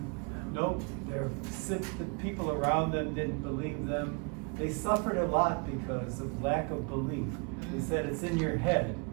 Nope, the people around them didn't believe them. They suffered a lot because of lack of belief. They said it's in your head.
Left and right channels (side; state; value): left; quieter; 34.0 dB